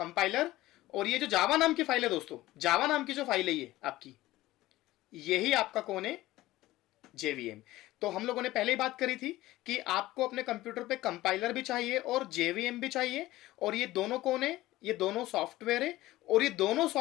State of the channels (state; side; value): quieter; right; 16.9 dB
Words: और ये जो जावा नाम की फाइल है दोस्तों, जावा नाम की जो फाइल है ये आपकी, यही आपका कौन है, जेवीएम। तो हम लोगों ने पहले ही बात करी थी कि आपको अपने कंप्यूटर पे कंपाइलर भी चाहिए और जेवीएम भी चाहिए, और ये दोनों कौन है, ये दोनों सॉफ्टवेयर है। और ये दोनों